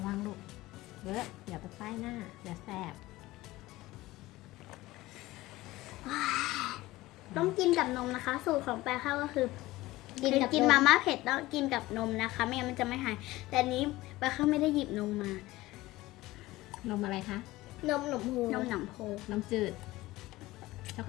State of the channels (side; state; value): right; quieter; 18.3 dB